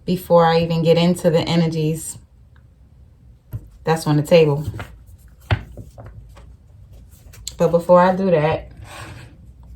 before I even get into the energies that's on the table. But before I do that,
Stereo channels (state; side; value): identical; both; correlation 1.00